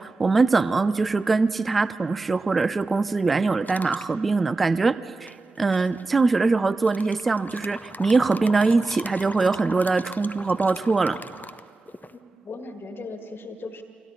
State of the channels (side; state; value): left; quieter; 3.4 dB